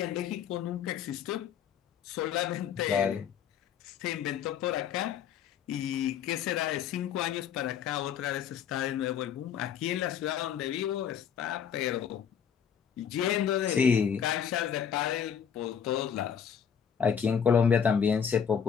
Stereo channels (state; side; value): quieter; right; 8.0 dB